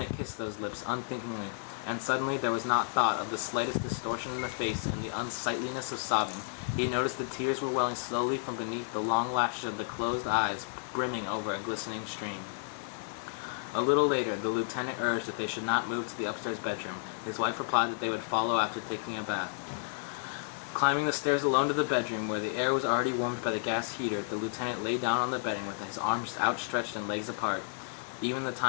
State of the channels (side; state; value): right; silent; digital silence